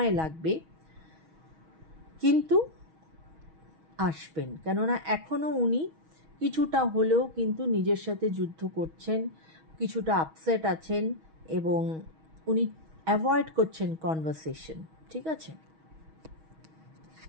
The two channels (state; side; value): late; left; 6.3 ms